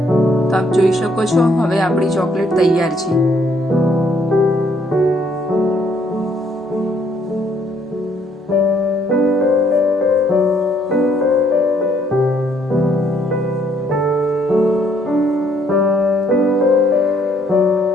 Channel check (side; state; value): both; normal; correlation 0.67